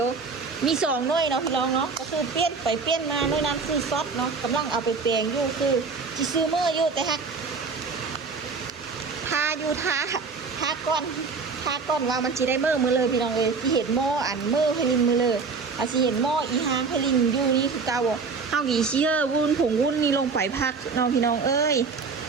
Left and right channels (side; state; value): left; quieter; 4.8 dB